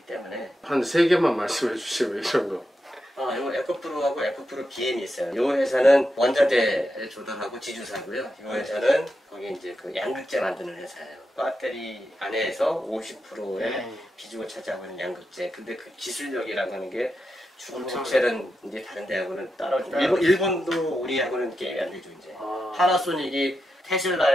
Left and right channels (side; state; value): both; normal; correlation 0.87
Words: 때문에 한 3개만 말씀해 주시면 이런 거. 요 에코프로하고 에코프로 BM이 있어요. 요 회사는 원자재를 조달하고 지주사고요. 요 회사는 거기 이제 그 양극재 만드는 회사예요. 배터리 안에서 50%의 비중을 차지하고 있는 양극재. 근데 그 기술력이라고 하는 게 중국체는 이제 다른 데하고는 따라오죠. 일본도 우리하고는 게임이 안 되죠 이제. 파나소닉이